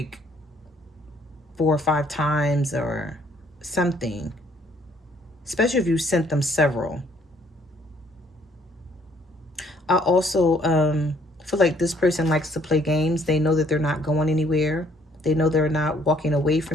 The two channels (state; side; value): normal; both; correlation 0.63